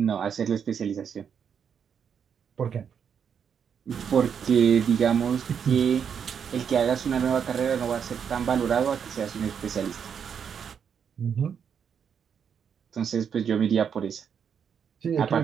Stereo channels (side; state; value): left; quieter; 7.4 dB